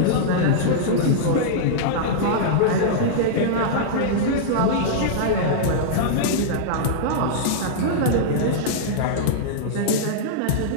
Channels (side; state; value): both; different; correlation -0.02